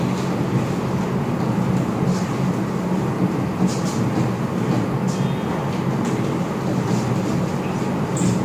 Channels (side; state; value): both; identical; correlation 1.00